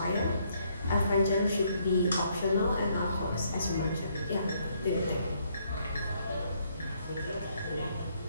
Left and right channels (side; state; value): both; inverted; correlation -0.70